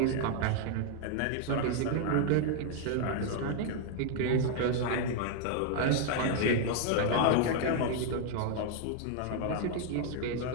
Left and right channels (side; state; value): both; different; correlation -0.01